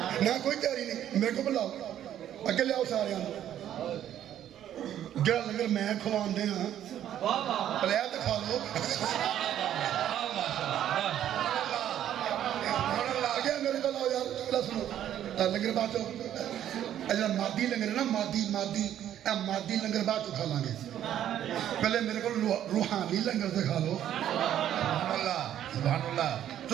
نہ کوئی تیاری نہیں، میرے کو بلاؤ، اگے لے آؤ سارے ہیں، جڑا لنگر میں کھوان دے ہاں، پلیا تو کھا لو، آگے میرے کو لاؤ یار، چکلا سنو، لنگر بات ہو، اجلا مادی لنگر ہے نا، مادی لنگر بعد تو کھا لیں گے، پہلے میرے کو روحانی لنگر سے کھا لو، سبحان اللہ، سبحان اللہ،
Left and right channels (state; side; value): quieter; left; 11.0 dB